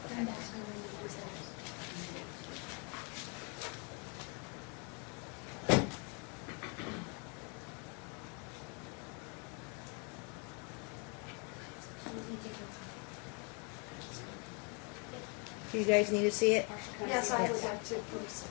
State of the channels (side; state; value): right; quieter; 35.4 dB